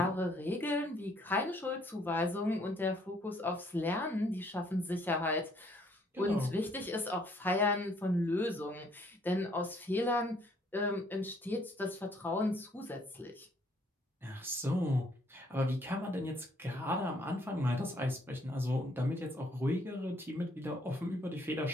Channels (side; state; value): both; normal; correlation 0.65